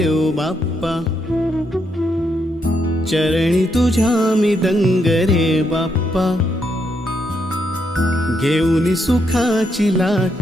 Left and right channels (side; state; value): both; normal; correlation 0.78